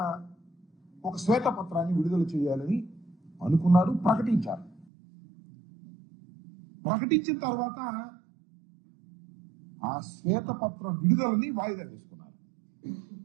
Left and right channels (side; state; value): left; drops out; at 4.9 s